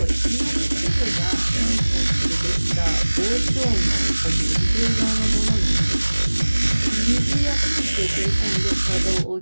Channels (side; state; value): both; inverted; correlation -1.00